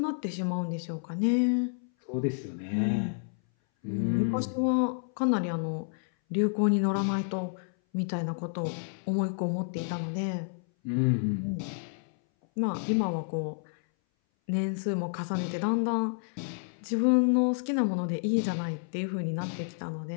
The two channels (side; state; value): right; silent; 58 dB below the other